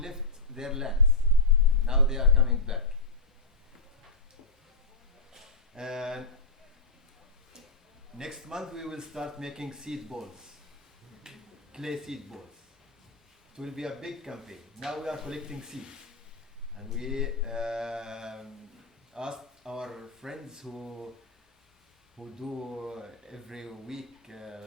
their lands, now they are coming back. And next month we will start making seed balls, clay seed balls. It will be a big campaign. Now we are collecting seeds, and we asked our friends who do every week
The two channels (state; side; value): quieter; right; 3.6 dB